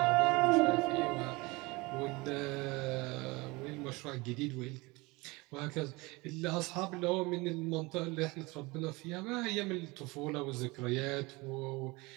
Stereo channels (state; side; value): quieter; left; 24.1 dB